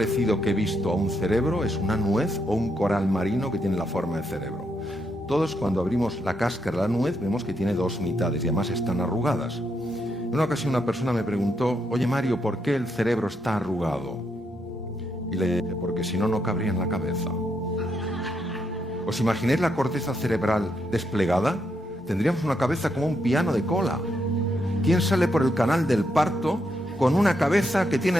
que he visto a un cerebro es una nuez o un coral marino que tiene la forma de cerebro. Todos, cuando abrimos la cáscara de la nuez, vemos que tiene dos mitades y además están arrugadas. En una ocasión una persona me preguntó: oye Mario, ¿por qué el cerebro está arrugado? Y le dije: porque si no, no cabría en la cabeza. ¿Os imagináis la corteza cerebral desplegada? Tendríamos una cabeza como un piano de cola. ¿Quién sale por el canal del parto con una cabeza que tiene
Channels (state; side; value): normal; both; correlation 0.79